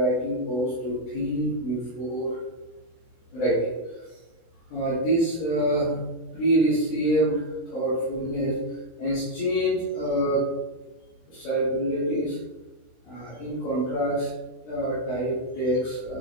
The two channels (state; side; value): late; right; 24 ms